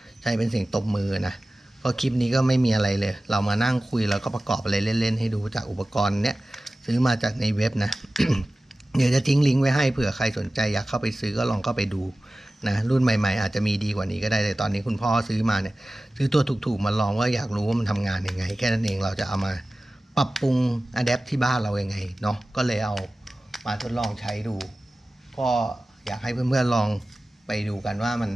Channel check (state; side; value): normal; both; correlation 0.96